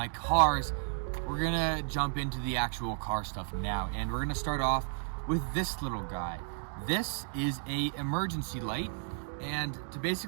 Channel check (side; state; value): left; silent; digital silence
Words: cars. We're gonna jump into the actual car stuff now, and we're gonna start off with this little guy. This is a emergency light. And to